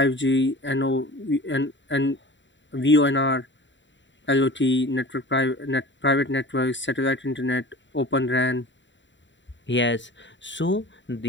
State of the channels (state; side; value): late; right; 0.54 ms